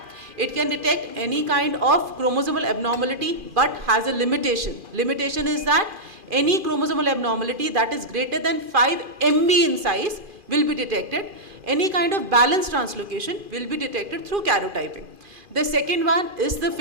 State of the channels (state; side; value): late; left; 2.4 ms